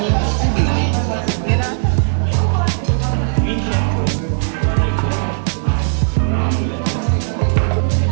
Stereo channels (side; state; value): left; silent; 65 dB below the other